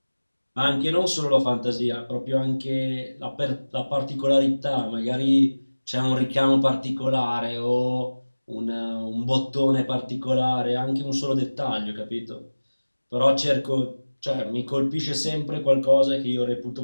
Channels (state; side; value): inverted; both; correlation -1.00